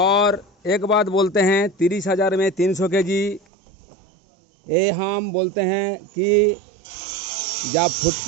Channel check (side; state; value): left; drops out; at 3.4 s